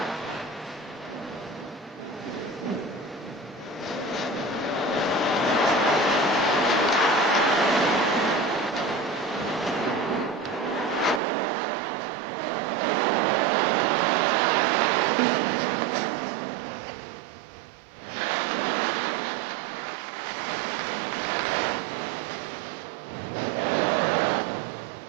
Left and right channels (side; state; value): left; drops out; at 11.2 s